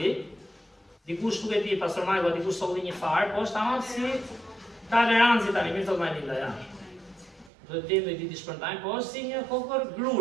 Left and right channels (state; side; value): drops out; left; at 7.5 s